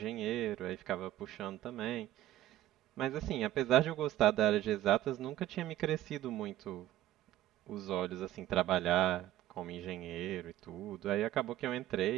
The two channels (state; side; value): quieter; left; 13.7 dB